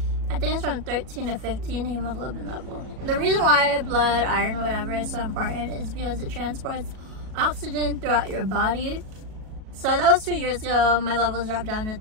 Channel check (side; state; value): left; late; 37 ms